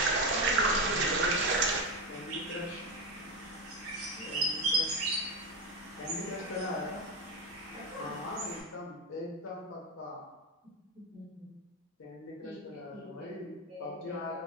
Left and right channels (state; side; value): normal; both; correlation 0.12